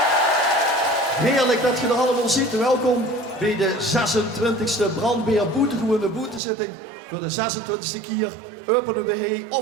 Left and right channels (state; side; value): drops out; left; at 6.4 s